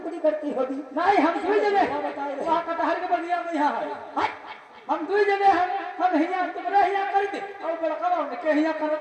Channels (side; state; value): both; identical; correlation 1.00